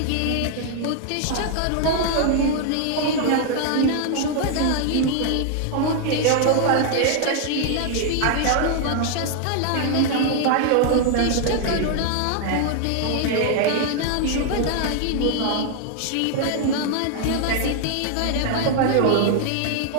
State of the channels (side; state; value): both; different; correlation 0.00